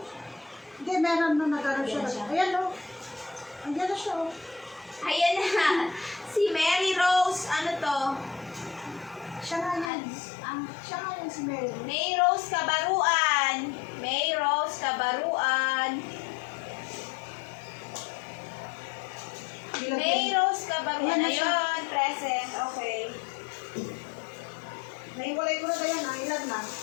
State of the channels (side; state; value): right; drops out; at 9.9 s